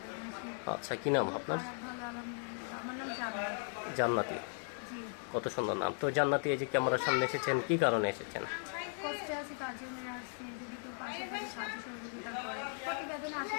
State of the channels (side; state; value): right; silent; 53 dB below the other